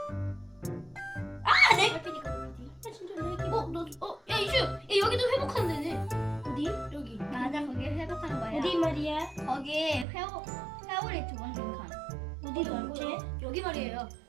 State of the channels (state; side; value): drops out; left; at 10.1 s